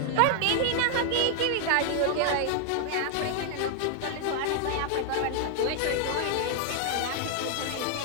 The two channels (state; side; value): different; both; correlation 0.00